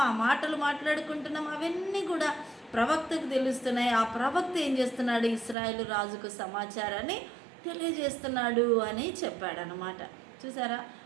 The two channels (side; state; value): left; drops out; at 5.6 s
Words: ఆ మాటలు మాట్లాడుకుంటున్నామో, అవన్నీ కూడా ప్రవక్తకు తెలుస్తున్నాయి. ఆ ప్రవక్త ఏం చేస్తున్నాడు? ఇశ్రాయేలు రాజుకు సమాచారాన్ని తెలియజేస్తున్నాడు అని చెప్పాడనమాట. చూసారా